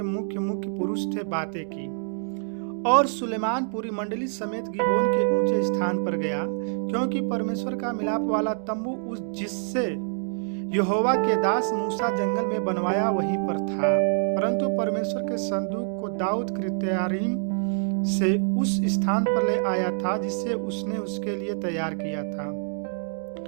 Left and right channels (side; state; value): left; silent; digital silence